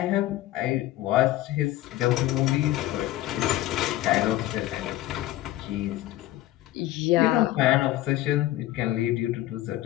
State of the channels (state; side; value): quieter; right; 15.2 dB